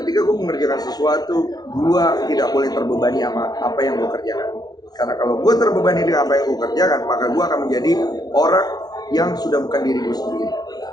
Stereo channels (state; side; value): late; right; 0.19 ms